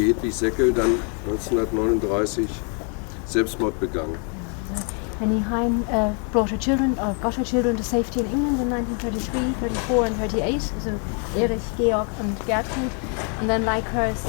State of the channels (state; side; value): quieter; right; 40.0 dB